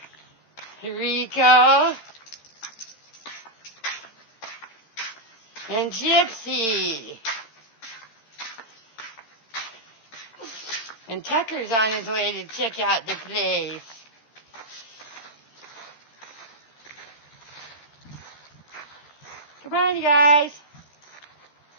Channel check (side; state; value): right; late; 13 ms